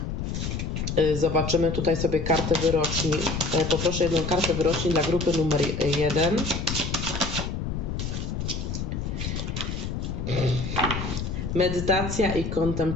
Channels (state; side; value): noise; left; rumble, 3 dB below the sound